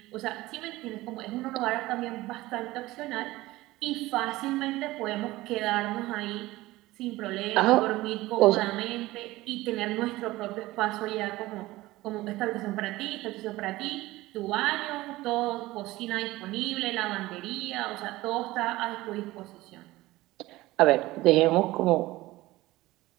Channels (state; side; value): quieter; left; 18.4 dB